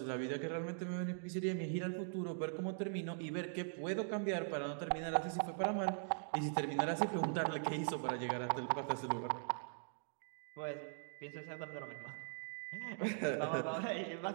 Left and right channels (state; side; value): silent; left; digital silence